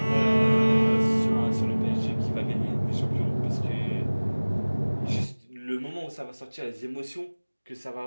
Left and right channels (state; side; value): inverted; both; correlation -1.00